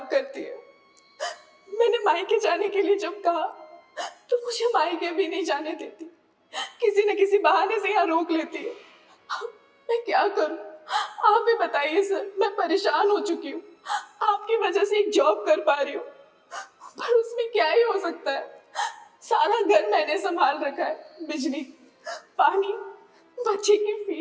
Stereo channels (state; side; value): identical; both; correlation 1.00